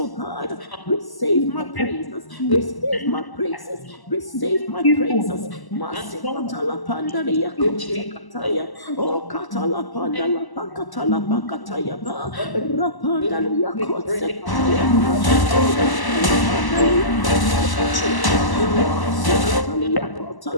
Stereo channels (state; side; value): late; right; 1.0 ms